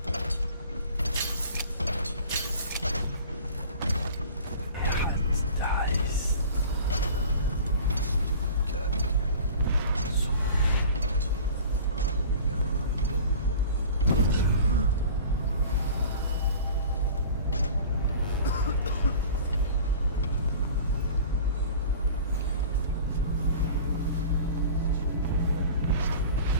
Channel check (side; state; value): both; inverted; correlation -0.41